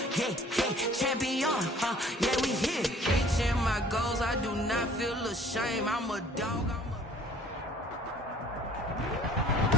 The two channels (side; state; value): both; normal; correlation 0.53